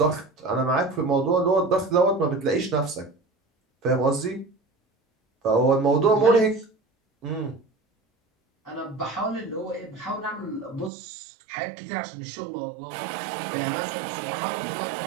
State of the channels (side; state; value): left; drops out; at 10.9 s